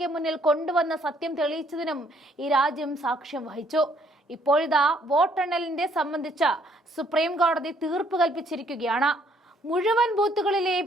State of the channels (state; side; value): normal; both; correlation 0.66